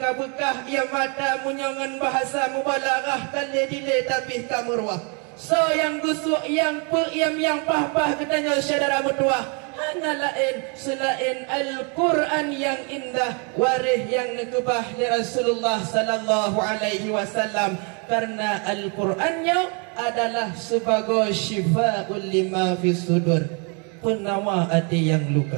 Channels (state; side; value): quieter; left; 35.6 dB